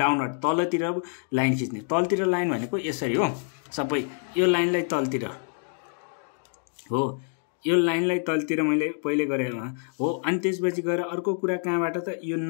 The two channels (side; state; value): right; silent; 57 dB below the other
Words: तलतिर लाइन खिच्ने। तलतिर लाइन भनेको यसरी हो, सबै यो लाइनलाई तलतिर हो, यो लाइनलाई तलतिर मैले पहिले गरेँ हो। अनि त्यसपछि गएर अर्को कुरा कहाँबाट त, यो